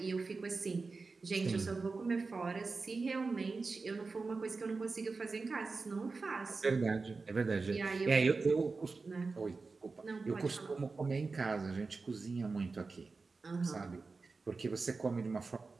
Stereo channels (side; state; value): left; quieter; 4.1 dB